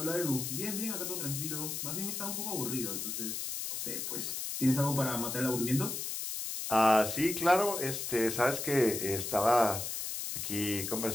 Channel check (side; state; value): left; noise; hiss, 4 dB below the sound